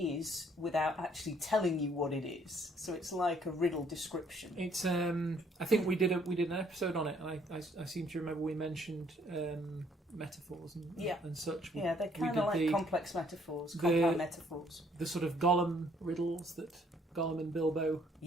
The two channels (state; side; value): normal; both; correlation 0.64